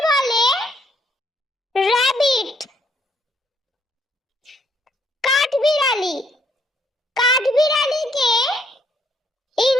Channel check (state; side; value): normal; both; correlation 0.70